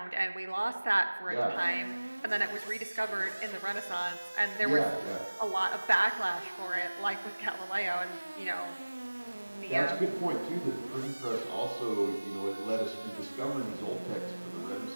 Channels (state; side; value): inverted; both; correlation -1.00